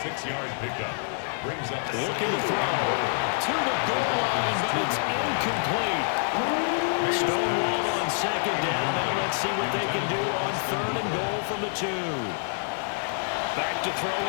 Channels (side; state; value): right; silent; 60 dB below the other